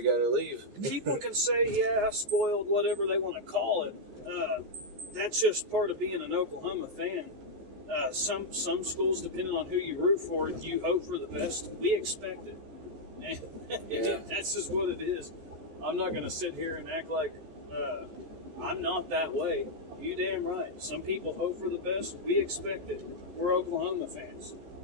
got to leave. People can say, spoiled, whatever they want to call it. That's just part of being an Oklahoma fan. Some schools, depending on who you root for, you hope for the best. We expect it. And that's just what it is. I'm not going to sit here and act like I'm not that way. You damn right. Some people hope for the best. We expect it. We're Oklahoma fans.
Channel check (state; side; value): late; left; 14 ms